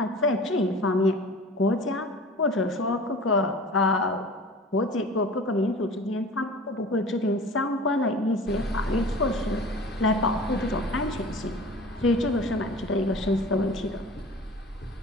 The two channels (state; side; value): normal; both; correlation 0.40